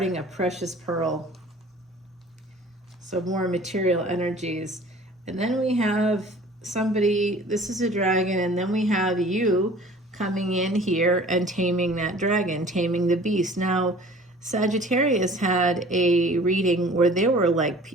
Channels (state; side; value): normal; both; correlation 0.47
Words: a precious pearl. So more material energies. And then we have somebody, this is a dragon, and then we have you coming in here and taming that dragon, taming the beast. Now, Sagittarius had a reading where there were